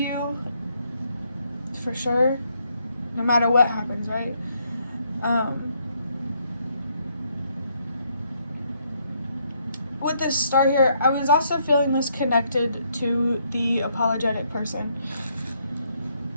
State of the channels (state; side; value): inverted; both; correlation -0.73